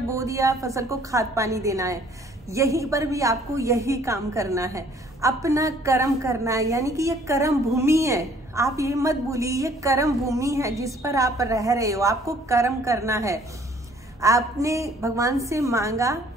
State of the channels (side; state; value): both; normal; correlation 0.58